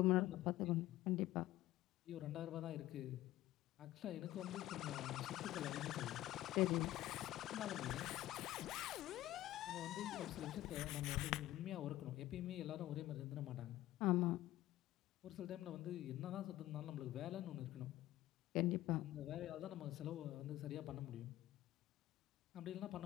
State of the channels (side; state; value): right; quieter; 15.2 dB